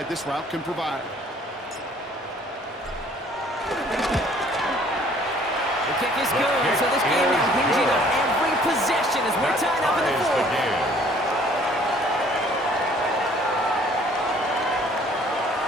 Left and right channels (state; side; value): normal; both; correlation 0.57